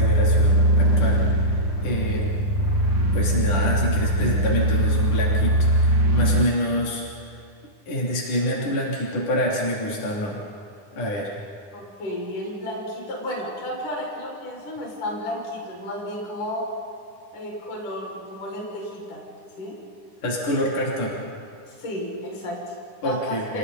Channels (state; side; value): late; right; 9.9 ms